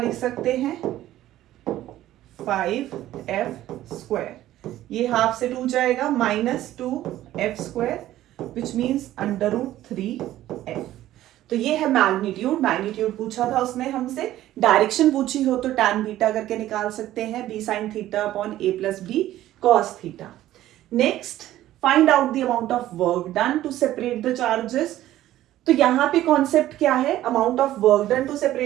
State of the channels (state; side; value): quieter; left; 14.0 dB